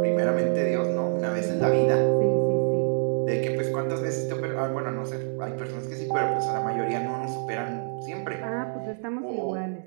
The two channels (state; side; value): silent; left; digital silence